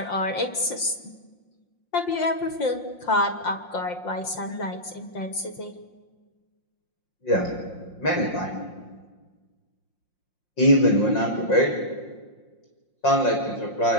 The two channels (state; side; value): late; right; 5.6 ms